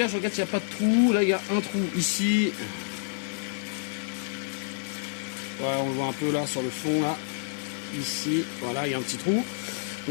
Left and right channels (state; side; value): silent; right; digital silence